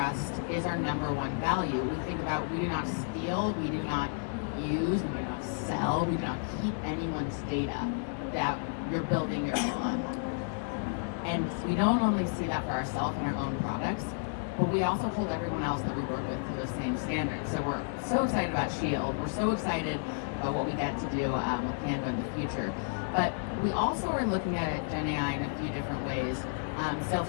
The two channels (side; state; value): right; silent; digital silence